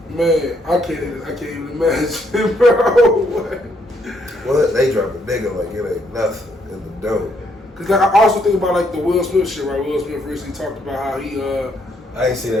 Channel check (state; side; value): normal; both; correlation 0.72